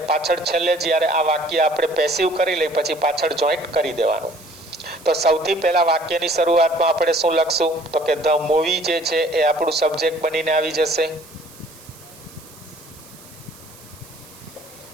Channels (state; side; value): noise; right; hiss, 21 dB below the sound